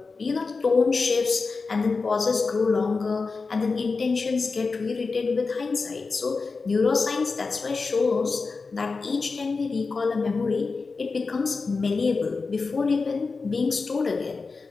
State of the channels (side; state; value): right; quieter; 4.3 dB